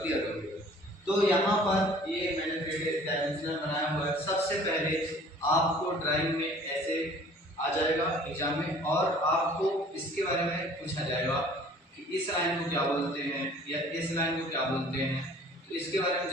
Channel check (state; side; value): normal; both; correlation 0.51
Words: क्लियर होंगे। तो यहाँ पर ये मैंने 3 डायमेंशनल बनाया हुआ है। सबसे पहले आपको ड्राइंग में ऐसे आ जाएगा एग्जाम में और आपको इसके बारे में पूछा जाएगा कि इस लाइन को क्या बोलते हैं या इस लाइन को क्या बोलते हैं, तो इसके बारे में